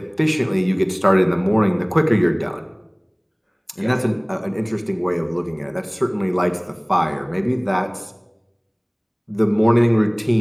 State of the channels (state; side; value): identical; both; correlation 1.00